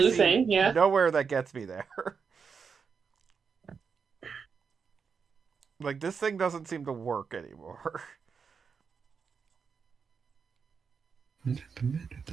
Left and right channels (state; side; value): quieter; left; 5.9 dB